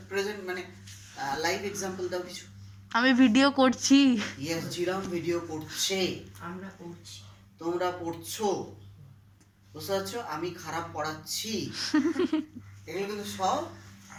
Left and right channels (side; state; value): both; identical; correlation 1.00